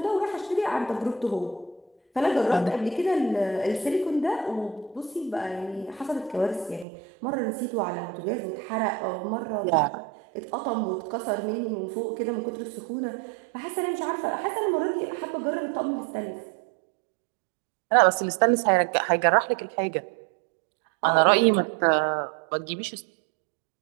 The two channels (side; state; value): left; drops out; at 6.9 s